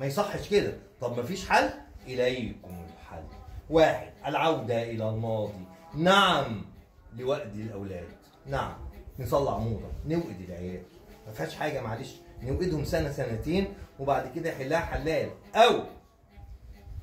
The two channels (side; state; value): both; identical; correlation 1.00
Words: يصحش كده. طب ما فيش حل؟ إليكم الحل. واحد، العودة إلى الماضي. نعم، لوأد الأولاد. نعم، نصلع موضة، نوقد العيال. ما فيهاش حاجة، معلش، نوقدهم سنة سنتين وبعد كده يحلها حلال. أو